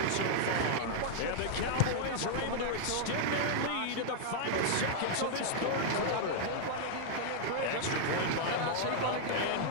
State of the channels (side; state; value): both; different; correlation -0.01